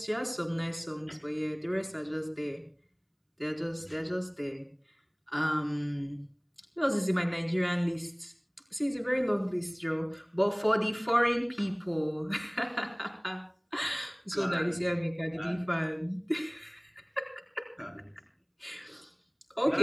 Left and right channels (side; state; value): both; identical; correlation 1.00